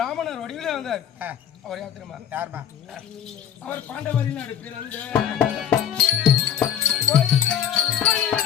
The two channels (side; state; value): right; quieter; 9.4 dB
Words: வடிவிலே வந்தார். அவர் யார் தெரியுமா? யாருமா? அவர் பாண்டவரின் நாடு பிறந்த